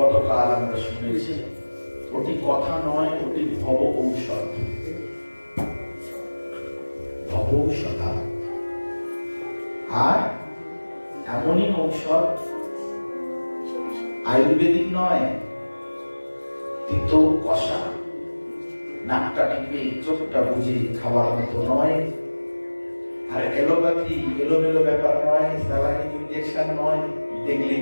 আমরা শুনেছি, ওটি কথা নয়, ওটি ভব ঔষধ। ভব ঔষধা, আর এমনই ঔষধ আয়ুর্বেদিক নয়, তিতো কষা, নাকটা টিপে চোখটা বুঝে খাওয়ার মতো নয়, আর এলোপ্যাথি এলোমেলো ব্যাপার নয়, স্যালাইন ইনজেকশন নয়, দেখলেই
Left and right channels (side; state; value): both; inverted; correlation -1.00